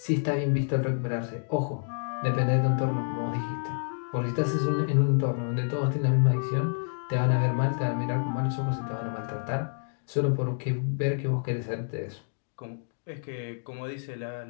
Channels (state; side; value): silent; right; digital silence